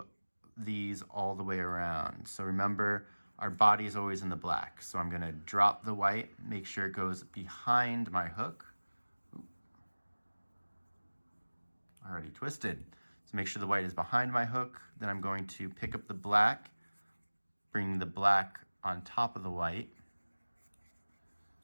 these all the way around. So remember, our body is always in the black. So I'm gonna drop the white, make sure it goes behind my hook. Already twisted. So make sure the white is behind my hook. Then I'm going to pick up the black, bring the black on top of the white,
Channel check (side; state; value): both; inverted; correlation -1.00